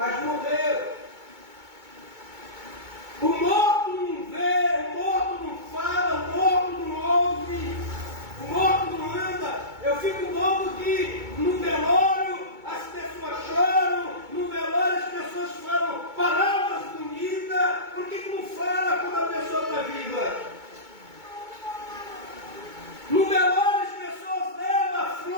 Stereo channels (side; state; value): left; late; 2.2 ms